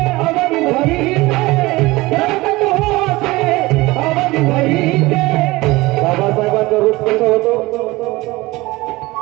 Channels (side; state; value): left; quieter; 20.8 dB